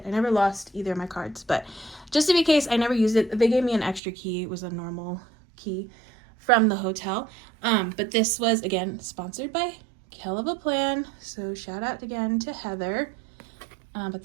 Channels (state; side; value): drops out; left; at 4.0 s